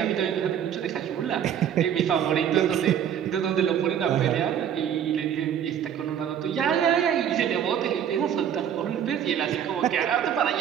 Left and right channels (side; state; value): left; quieter; 9.2 dB